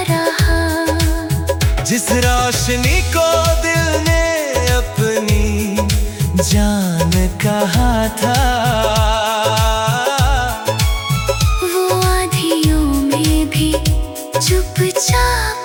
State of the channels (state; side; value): identical; both; correlation 1.00